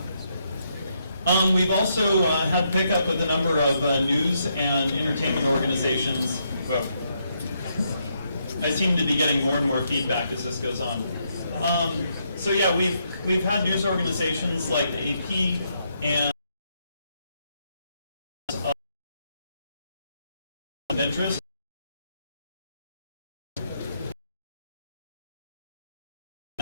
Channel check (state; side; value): inverted; both; correlation -0.77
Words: We've also had pickup with a number of news and entertainment organizations. Whoa. I seem to be getting more and more feedback as this goes on. So yeah, we've had news organizations like the AP and of interest.